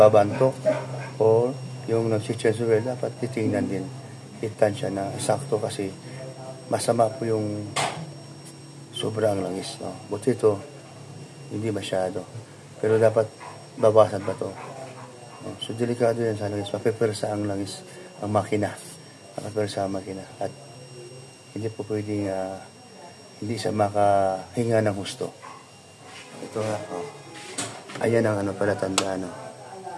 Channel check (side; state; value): both; identical; correlation 1.00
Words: o yung nag-changer, dapat titingnan din. Itan siya na sakto kasi masama po yung sobrang langis, no? Buti ito, hindi masyado. Pero dapat babasan pa to. So, delikado yan sa langis. Mapipersa ang langis, ang makina. Mapipersa ang makina. At hindi po pwedeng hindi siya makahinga ng husto. Ito nga, ayan ang palatandaan,